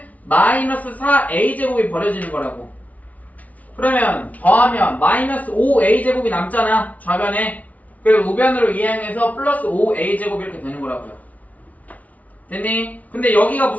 마이너스 4a 제곱이 버려지는 거라고. 그러면 더하면 마이너스 5a 제곱이 남잖아. 좌변에. 그리고 우변으로 이항해서 플러스 5a 제곱 이렇게 되는 거라고요. 됐니? 근데 여기가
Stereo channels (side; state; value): right; late; 0.072 ms